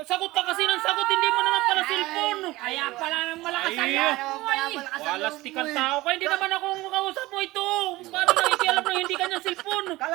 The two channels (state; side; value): quieter; left; 19.1 dB